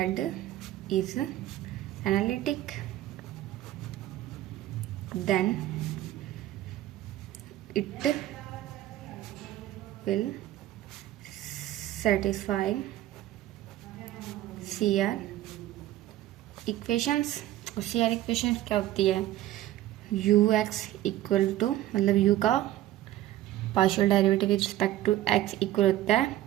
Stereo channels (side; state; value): left; quieter; 14.4 dB